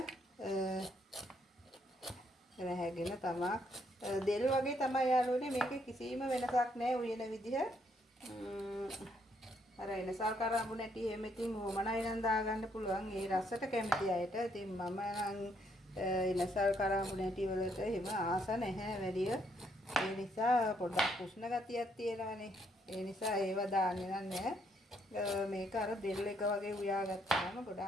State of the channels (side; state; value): both; normal; correlation 0.72